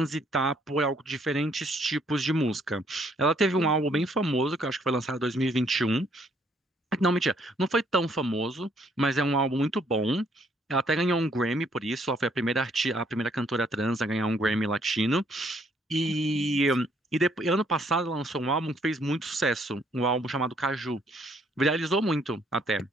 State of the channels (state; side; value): normal; both; correlation 0.67